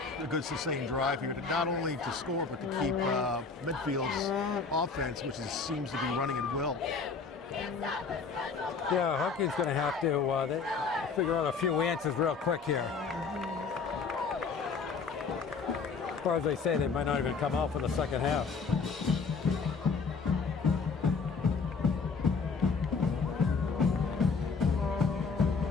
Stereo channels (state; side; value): quieter; right; 4.9 dB